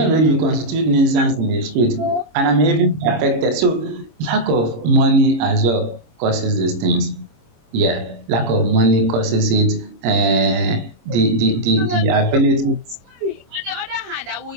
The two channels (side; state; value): left; late; 25 ms